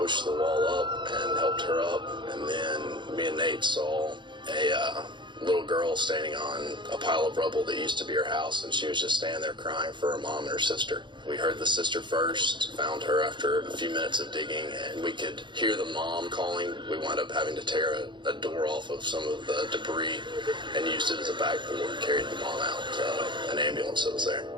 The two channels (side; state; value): left; late; 0.23 ms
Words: the wall up and helped her up, and then me and Nate saw a little girl standing on a pile of rubble that used to be her house, and she was just standing there crying for her mom and her sister. We heard the sister first, found her after a few minutes of digging, and we could hear the mom calling. We wound up having to tear a door off of some of the debris and used it as a backboard, carried the mom out to an ambulance that was there.